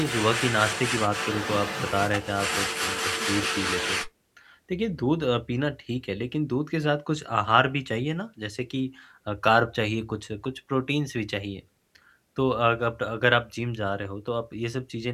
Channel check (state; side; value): identical; both; correlation 1.00